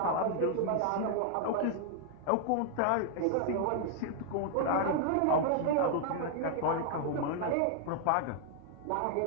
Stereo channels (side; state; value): both; different; correlation 0.00